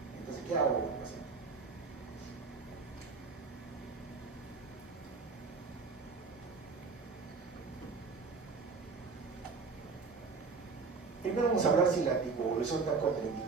Entonces, ¿qué hago con el paciente? Primero vamos a hablar si la anticoagulación está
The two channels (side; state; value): left; quieter; 4.7 dB